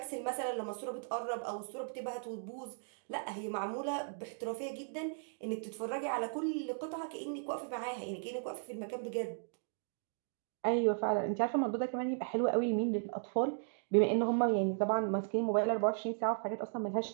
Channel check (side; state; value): left; silent; digital silence